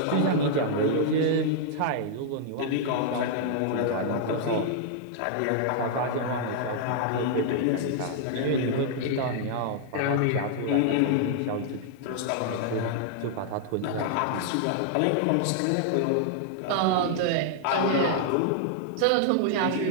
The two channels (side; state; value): both; different; correlation -0.01